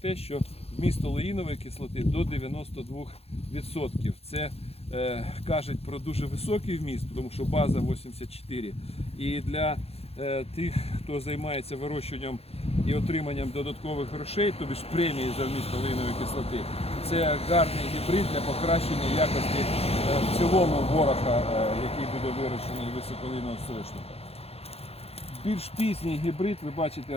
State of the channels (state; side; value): late; right; 0.29 ms